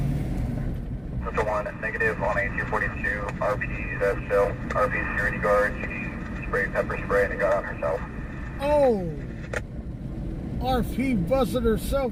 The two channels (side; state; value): both; identical; correlation 1.00